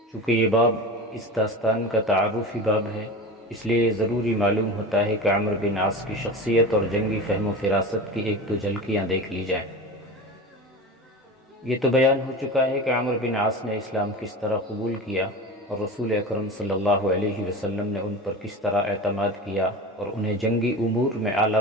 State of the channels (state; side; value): normal; both; correlation 0.30